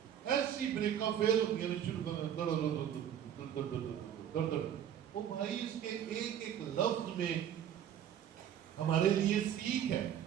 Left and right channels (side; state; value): left; quieter; 9.8 dB